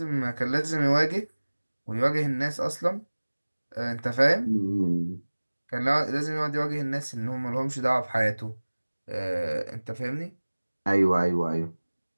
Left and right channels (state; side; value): inverted; both; correlation -1.00